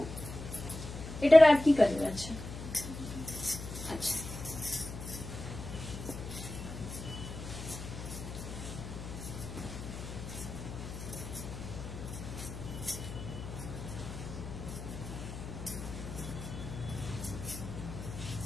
इधर आप की कलर, अच्छा अच्छा,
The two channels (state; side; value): noise; left; hum, 9 dB below the sound